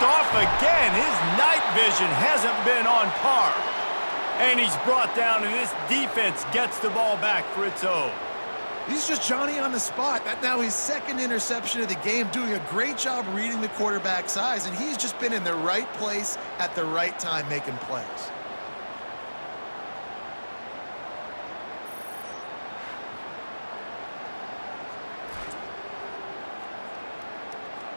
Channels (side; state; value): both; inverted; correlation -1.00